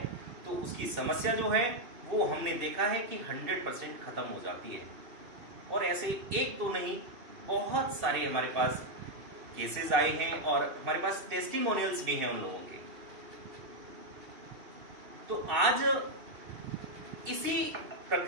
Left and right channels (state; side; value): late; left; 2.6 ms